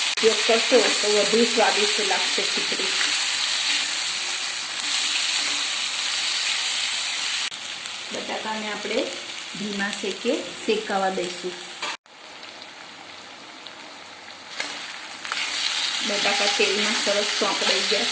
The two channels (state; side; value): identical; both; correlation 1.00